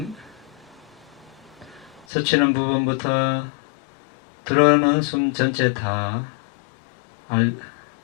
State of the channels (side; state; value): right; drops out; at 2.1 s